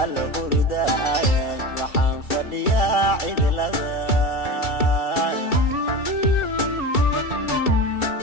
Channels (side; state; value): right; late; 2.3 ms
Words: alla hurdaan waxaan fadhiyaa cidlada